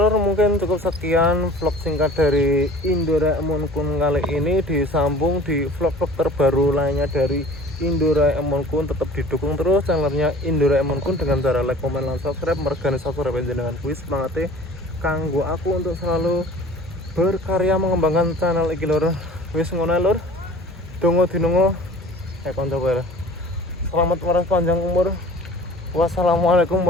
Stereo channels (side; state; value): both; normal; correlation 0.45